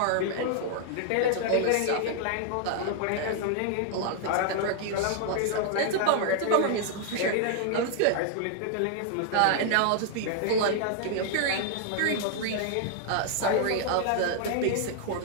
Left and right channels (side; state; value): both; different; correlation -0.01